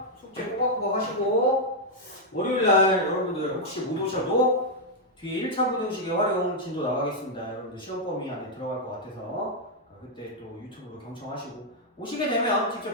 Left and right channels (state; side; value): normal; both; correlation -0.02